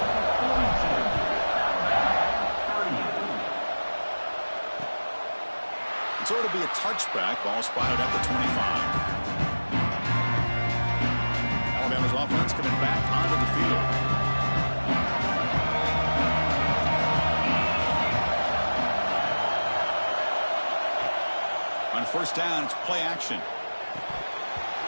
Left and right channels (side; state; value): both; inverted; correlation -1.00